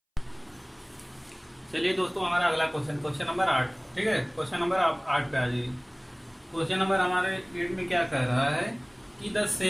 चलिए दोस्तों, हमारा अगला क्वेश्चन, क्वेश्चन नंबर 8। ठीक है, क्वेश्चन नंबर 8 पे आ जाइए। क्वेश्चन नंबर हमारे 8 में क्या कह रहा है कि the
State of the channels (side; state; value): both; identical; correlation 1.00